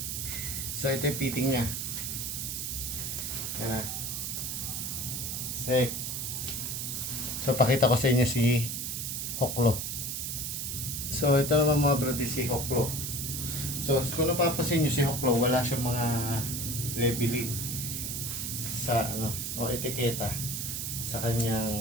So ito yung fitting niya. Yan na. So pakita ko sa inyo si Hoklo. So ito naman mga bro, si Hoklo. So kung napapasin nyo si Hoklo, wala siyang mga labeling sa o etiketa sa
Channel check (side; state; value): right; noise; hiss, 3 dB below the sound